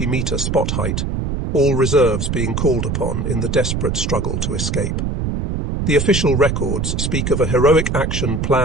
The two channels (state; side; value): noise; right; rumble, 1 dB below the sound